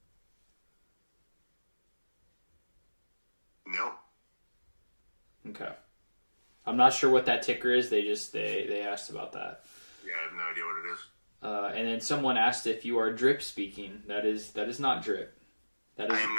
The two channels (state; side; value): inverted; both; correlation -1.00